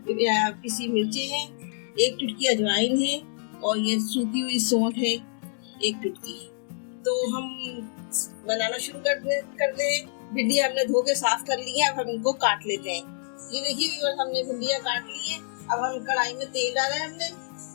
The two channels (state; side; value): silent; right; digital silence